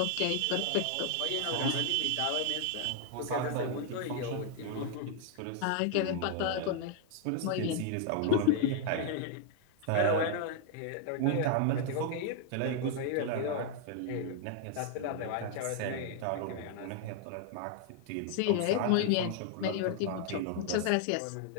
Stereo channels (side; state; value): both; different; correlation 0.00